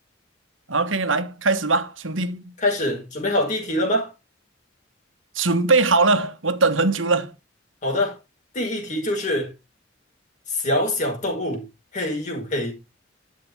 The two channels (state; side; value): normal; both; correlation -0.20